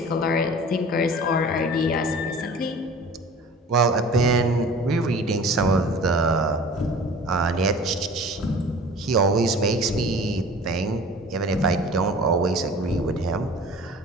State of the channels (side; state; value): both; normal; correlation 0.43